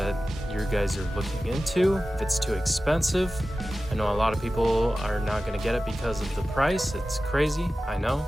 you guys are looking into, if it's too expensive. I know a lot of people are not going to get it because of the price. It's crazy, I know,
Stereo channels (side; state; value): both; normal; correlation 0.95